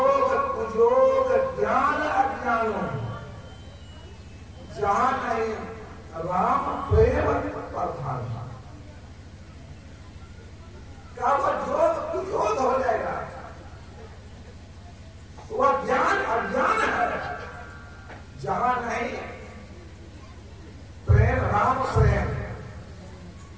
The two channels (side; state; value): both; identical; correlation 1.00